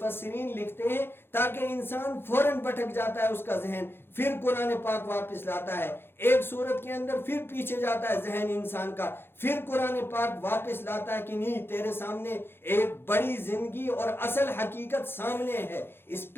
لکھتے ہیں تاکہ انسان فوراً بھٹک جاتا ہے اس کا ذہن، پھر قرآن پاک واپس لاتا ہے. ایک صورت کے اندر پھر پیچھے جاتا ہے ذہن انسان کا، پھر قرآن پاک واپس لاتا ہے کہ نہیں تیرے سامنے ایک بڑی زندگی اور اصل حقیقت سامنے ہے. اس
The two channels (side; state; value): right; late; 0.11 ms